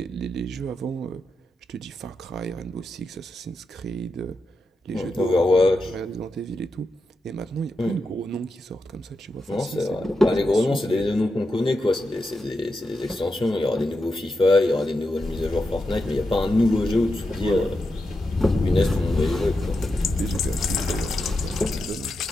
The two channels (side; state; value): both; normal; correlation 0.87